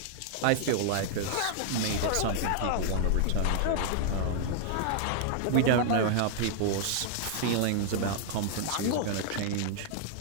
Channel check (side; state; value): both; different; correlation -0.01